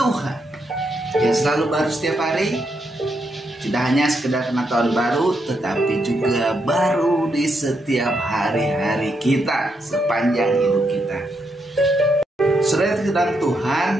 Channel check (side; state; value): both; normal; correlation 0.80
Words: yang selalu baru setiap hari. Tidak hanya sekedar pengetahuan baru, tetapi juga baru di setiap hari-hari kita sepanjang hidup kita. Saudara, kedalam